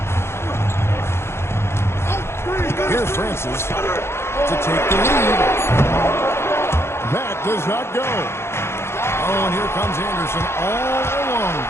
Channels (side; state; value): right; late; 0.12 ms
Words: Here's Francis to take the lead. That does not go. Oh, and here comes Anderson all alone.